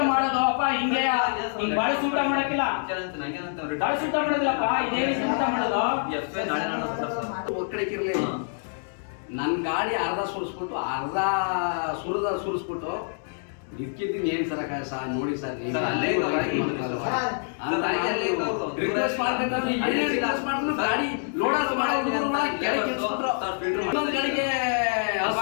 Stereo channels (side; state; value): right; silent; 60 dB below the other